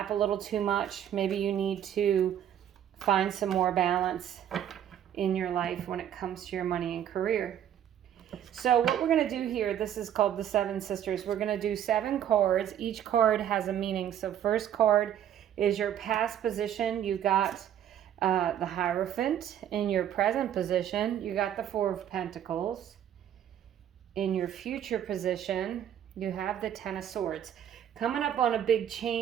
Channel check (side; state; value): left; quieter; 10.2 dB